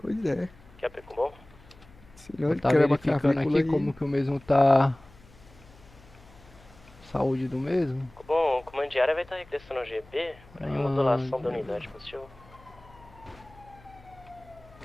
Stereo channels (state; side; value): noise; left; hum, 24 dB below the sound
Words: Pois é. Quer pico bom? Senão ele Tá quebra a verificando clavícula aqui aí. como que o mesmo tá... Saúde do mesmo. Bom, o comandiário vai estar regressando ao GB para remodulação da unidade, positivo.